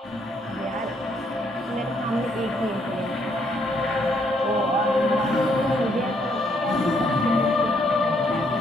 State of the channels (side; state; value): both; normal; correlation 0.71